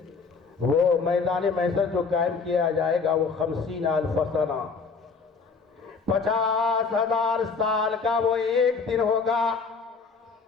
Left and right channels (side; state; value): right; quieter; 4.9 dB